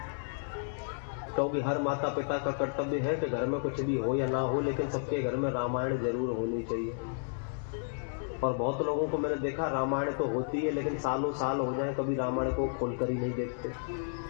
क्योंकि हर माता पिता का कर्तव्य है कि घर में कुछ भी हो या ना हो, लेकिन सबके घर में रामायण जरूर होनी चाहिए। और बहुत लोगों को मैंने देखा, रामायण तो होती है लेकिन सालों साल हो जाए कभी रामायण को खोलकर ही नहीं देखते।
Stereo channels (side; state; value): right; silent; digital silence